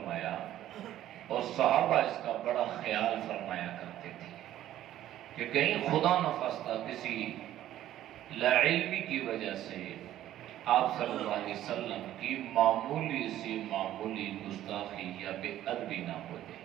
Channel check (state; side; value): quieter; left; 12.9 dB